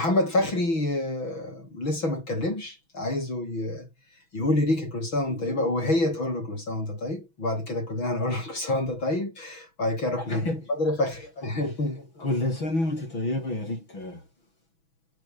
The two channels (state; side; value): late; right; 6.1 ms